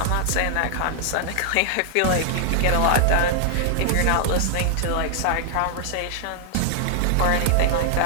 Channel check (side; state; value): both; different; correlation -0.01